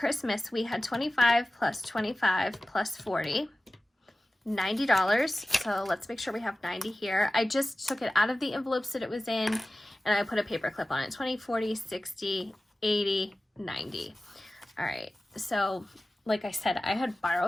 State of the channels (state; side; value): normal; both; correlation 0.96